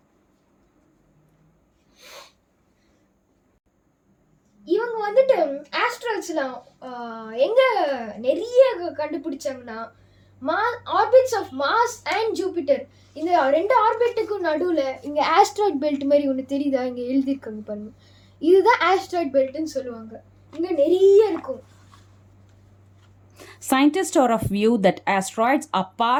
இவங்க வந்துட்டு ஆஸ்ட்ராய்ட்ஸ்லாம் எங்கே நிறைய கண்டுபிடிச்சாங்கன்னா orbits of Mars and Jupiter, இந்த 2 ஆர்பிட்டுக்கும் நடுவில் இங்கே ஆஸ்ட்ராய்ட் பெல்ட் மாதிரி ஒன்று தெரியுதா, இங்கே எழுதியிருக்காங்க பாருங்க. இதுதான் ஆஸ்ட்ராய்ட் பெல்ட்னு சொல்லுவாங்க. இங்கே நிறைய இருக்கும். Scientists are of view that asteroids are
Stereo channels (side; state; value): both; identical; correlation 1.00